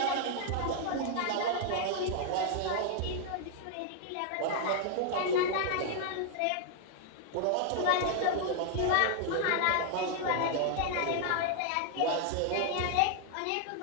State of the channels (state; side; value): different; both; correlation 0.00